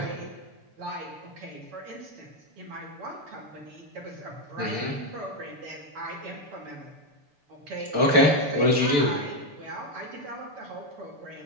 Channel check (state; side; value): late; left; 6.9 ms